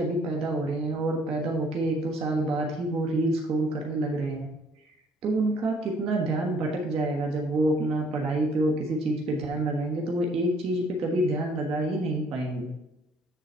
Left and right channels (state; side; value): normal; both; correlation 0.61